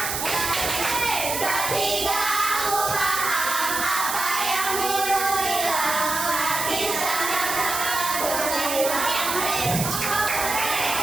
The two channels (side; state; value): right; noise; hiss, 3 dB below the sound